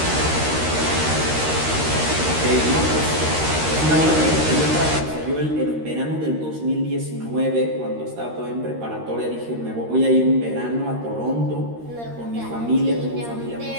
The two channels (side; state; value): left; late; 13 ms